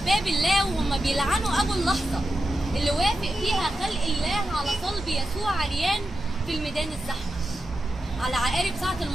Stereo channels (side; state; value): both; normal; correlation 0.90